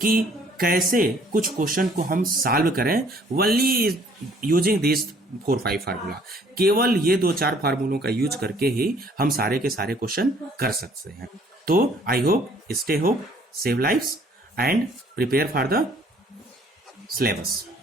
कि कैसे कुछ क्वेश्चन को हम सॉल्व करें वनली यूजिंग दिस 4-5 फार्मूला। केवल ये 2-4 फार्मूलों का यूज करके ही हम सारे के सारे क्वेश्चन कर सकते हैं। तो I hope, stay hope, save lives and prepare for the syllabus.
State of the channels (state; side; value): normal; both; correlation 0.59